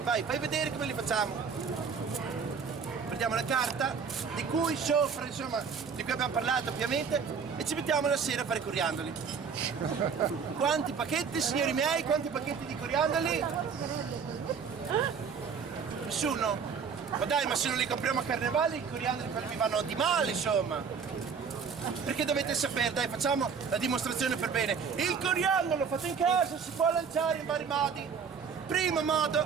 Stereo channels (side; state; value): left; quieter; 6.2 dB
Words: Vai, fai vedere come li facciamo. Prendiamo la carta, di cui sopra, insomma, di cui abbiamo parlato ovviamente, e ci mettiamo la sera a fare i coriandoli. Quanti pacchetti, signori miei, quanti pacchetti di coriandoli? Nessuno? Ma dai, ma se non li compriamo a carnevale, i coriandoli mi vanno di male, insomma. Perché dovete sapere, dai, facciamo la dimostrazione per bene. Il coriandolo fatto in casa si può lanciare in vari modi. Primo